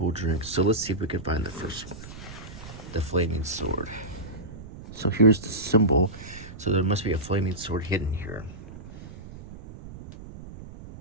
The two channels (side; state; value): right; noise; rumble, 14 dB below the sound